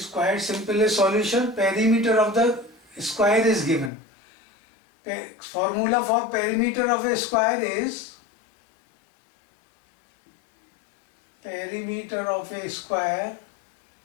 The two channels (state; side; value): drops out; right; at 3.9 s